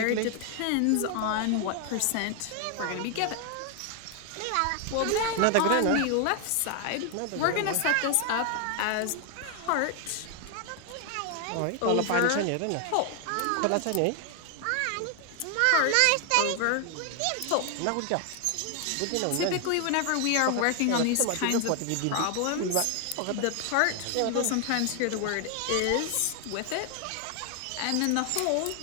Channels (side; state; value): both; different; correlation 0.00